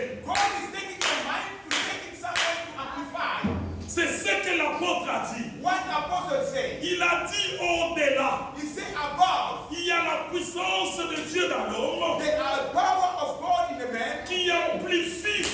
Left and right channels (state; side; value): identical; both; correlation 1.00